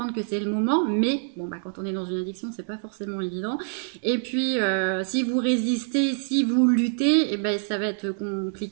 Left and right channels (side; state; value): left; silent; digital silence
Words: que c'est le moment, mais bon quand on est dans une addiction c'est pas forcément évident. Et puis si vous résistez, si vous luttez, et ça va être